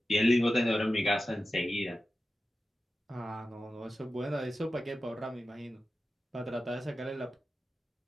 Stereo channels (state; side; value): normal; both; correlation 0.93